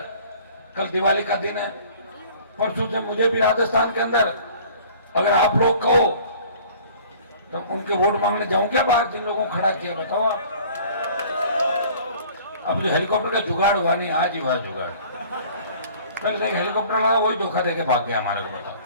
कल दिवाली का दिन है, परसों से मुझे भी राजस्थान के अंदर अगर आप लोग कहो तो उनके वोट मांगने जाऊं क्या बाहर, जिन लोगों को खड़ा किया बताओ आप। अब जो हेलीकॉप्टर का जुगाड़ हुआ नहीं, आज ही हुआ जुगाड़। पहले देख हेलीकॉप्टर लगा, वही धोखा देके भाग गया हमारे को।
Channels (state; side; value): inverted; both; correlation -0.50